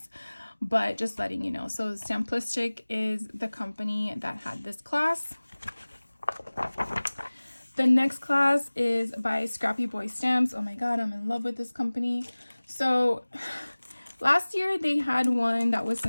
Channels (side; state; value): both; inverted; correlation -1.00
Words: but just letting you know. So Stamplistic is the company that had this class. The next class is by Scrappy Boy Stamps. Oh my god, I'm in love with this company. So last year they had one that was